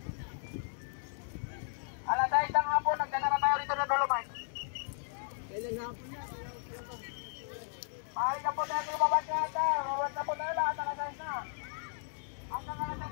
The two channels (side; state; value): right; silent; digital silence